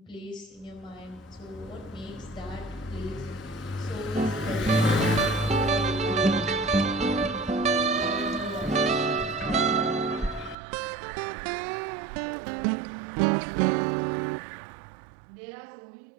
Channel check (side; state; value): left; drops out; at 10.6 s